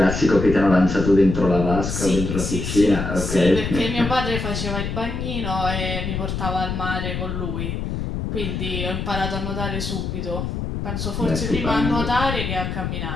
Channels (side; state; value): left; noise; rumble, 3 dB below the sound